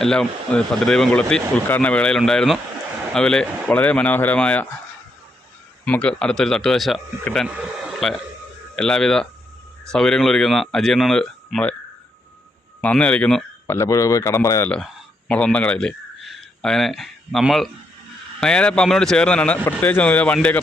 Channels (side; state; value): both; normal; correlation 0.78